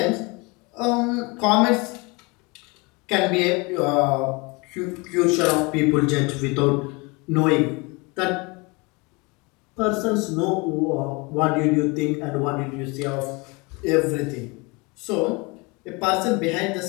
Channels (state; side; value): quieter; right; 27.7 dB